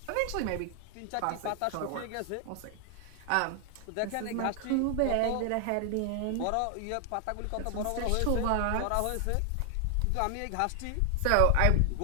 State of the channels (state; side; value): different; both; correlation 0.00